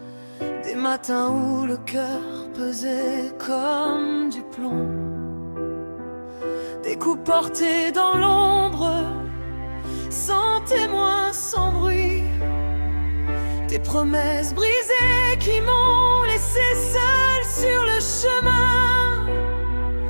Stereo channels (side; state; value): both; inverted; correlation -1.00